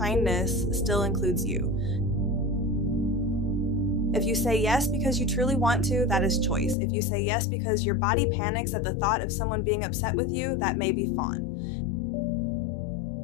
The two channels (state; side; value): drops out; right; at 6.8 s